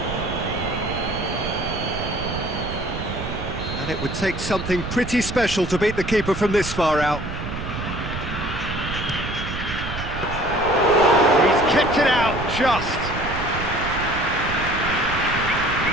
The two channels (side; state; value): right; noise; rumble, 7 dB below the sound